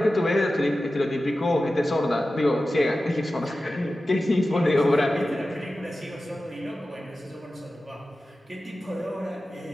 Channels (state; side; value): normal; both; correlation 0.94